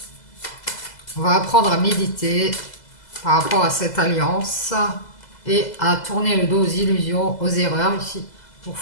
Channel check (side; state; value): right; late; 2.0 ms